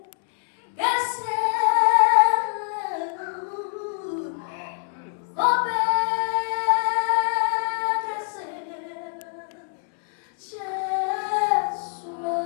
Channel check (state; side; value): silent; right; 62 dB below the other